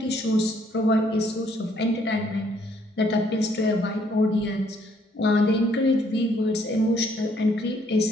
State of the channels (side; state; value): both; normal; correlation 0.66